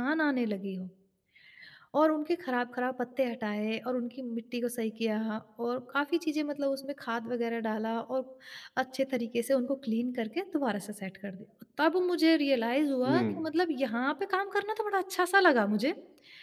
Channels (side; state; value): both; identical; correlation 1.00